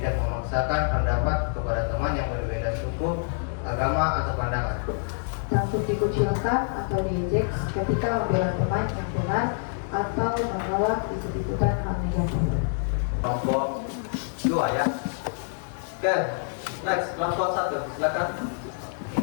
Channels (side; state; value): right; silent; 61 dB below the other